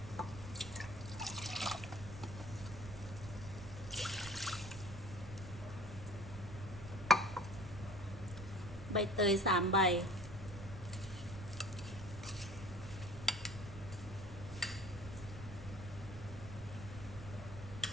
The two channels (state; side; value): noise; right; rumble, 11 dB below the sound